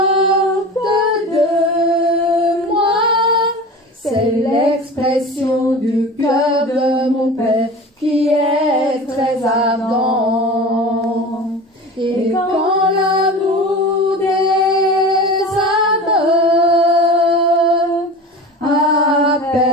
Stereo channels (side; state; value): both; normal; correlation 0.34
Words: de moi, c'est l'expression du cœur de mon Père qui est très ardent. Et quand l'amour des âmes